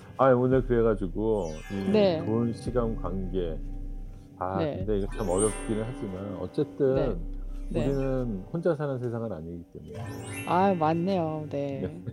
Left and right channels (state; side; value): identical; both; correlation 1.00